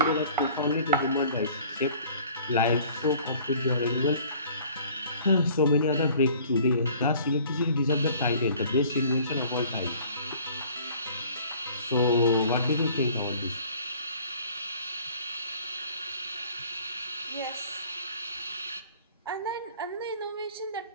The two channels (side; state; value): both; inverted; correlation -0.52